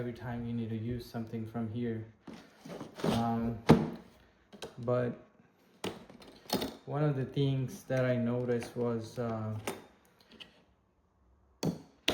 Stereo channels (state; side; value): identical; both; correlation 1.00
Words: time you need to use something from here. But one of the things that I noticed was